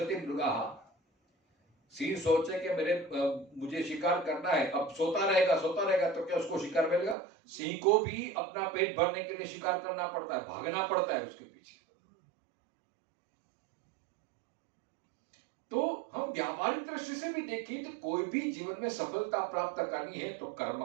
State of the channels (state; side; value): drops out; left; at 7.2 s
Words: मृगाः। सिंह सोचे कि मुझे शिकार करना है, अब सोता रहेगा तो क्या उसको शिकार मिलेगा? सिंह को भी अपना पेट भरने के लिए शिकार करना पड़ता है, भागना पड़ता है उसके पीछे। तो हम व्यावहारिक दृष्टि से भी देखें तो कोई भी जीवन में सफलता प्राप्त करनी है तो